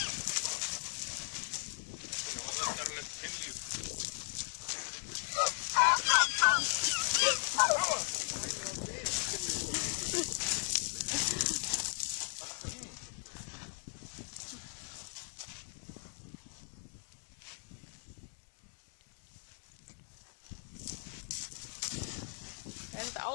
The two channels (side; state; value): right; silent; 53 dB below the other